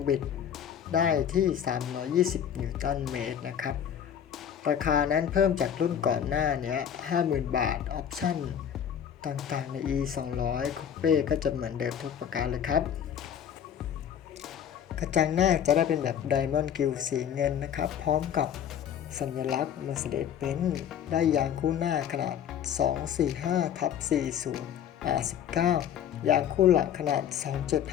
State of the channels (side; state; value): right; quieter; 9.0 dB